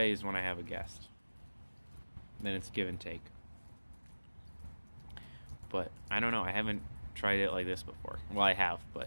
is when I have a guest. Then it's give and take. But I don't know, I haven't tried it like this before. Well, I have,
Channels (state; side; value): inverted; both; correlation -1.00